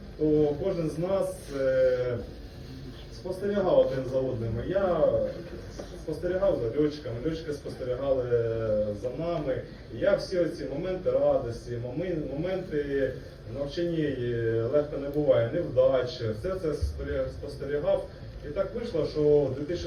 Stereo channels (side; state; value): both; identical; correlation 1.00